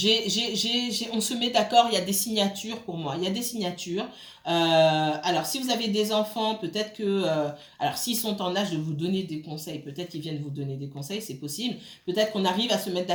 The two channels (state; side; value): identical; both; correlation 1.00